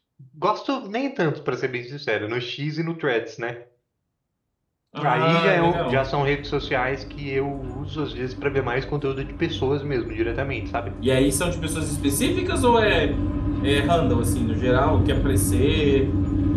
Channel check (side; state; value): both; identical; correlation 1.00